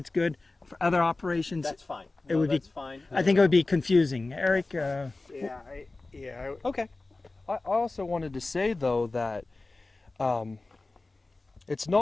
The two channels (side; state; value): right; quieter; 3.3 dB